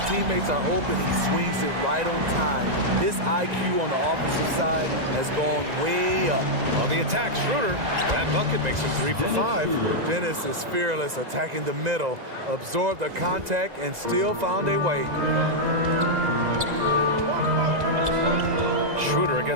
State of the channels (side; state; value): left; late; 2.0 ms